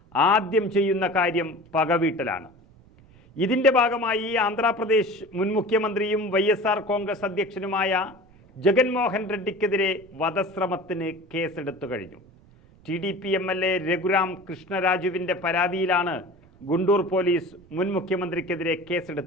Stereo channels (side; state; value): right; noise; rumble, 27 dB below the sound